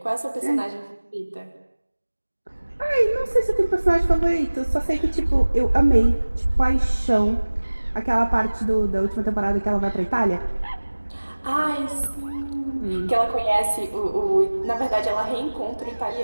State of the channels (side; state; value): both; inverted; correlation -1.00